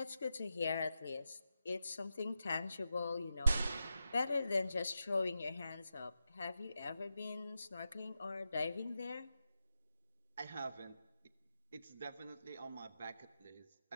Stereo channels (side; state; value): both; inverted; correlation -0.89